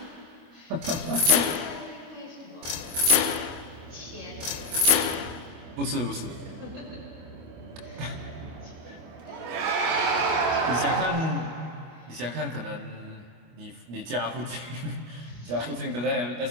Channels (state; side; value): late; left; 24 ms